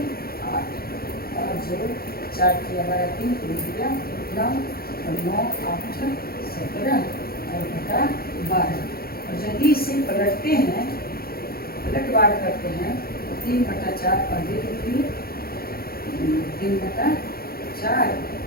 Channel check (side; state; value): right; late; 0.44 ms